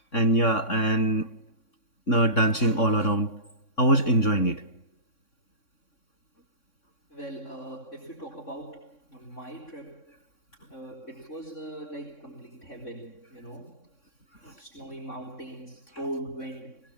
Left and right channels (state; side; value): late; right; 3.6 ms